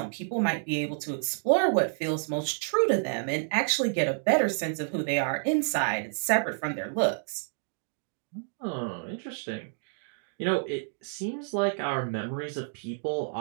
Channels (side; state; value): left; silent; digital silence